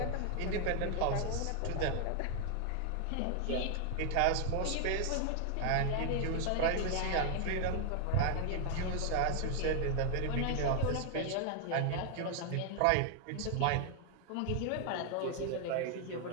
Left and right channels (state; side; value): different; both; correlation 0.00